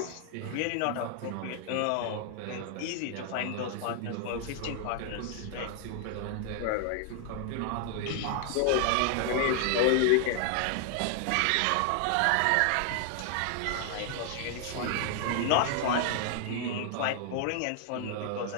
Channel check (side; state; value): both; different; correlation 0.00